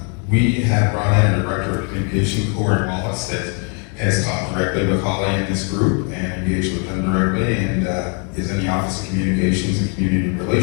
we have brought in a director of communication, Corey Wallace, that has talked directly with Holly and this group and engaged with them directly, and is in the Office of Communications and Community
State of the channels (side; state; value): right; quieter; 37.9 dB